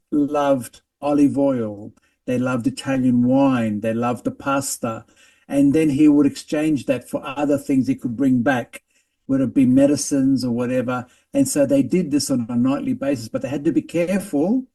loved olive oil, they loved Italian wine, they loved the pasta. And then he would exchange that for other things he could bring back, whether it be medicines or whatever. And so they did this on a nightly basis, but they had to be careful.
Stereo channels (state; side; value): identical; both; correlation 1.00